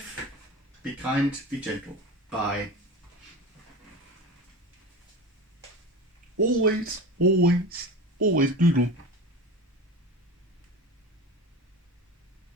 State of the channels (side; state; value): both; normal; correlation 0.30